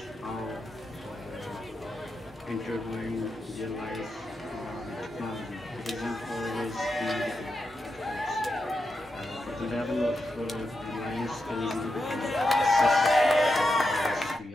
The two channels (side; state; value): both; normal; correlation 0.87